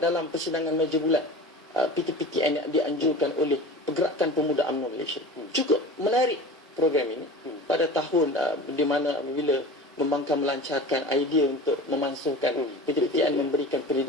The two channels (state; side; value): normal; both; correlation 0.35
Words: persidangan meja bulat PTPTN yang dianjurkan oleh Pergerakan Pemuda UMNO Malaysia. Cukup menarik program ini pada tahun di mana apabila membangkang melancarkan idea untuk memansuhkan PTPTN memberikan